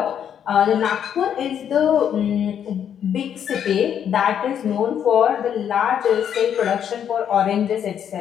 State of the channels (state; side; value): quieter; right; 8.9 dB